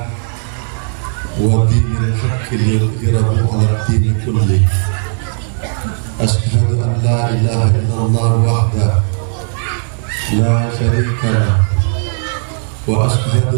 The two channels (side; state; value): left; silent; digital silence